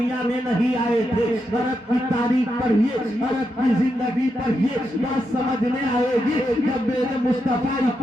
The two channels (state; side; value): normal; both; correlation 0.84